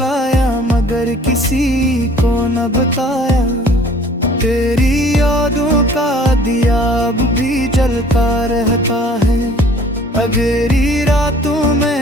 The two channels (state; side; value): normal; both; correlation 0.53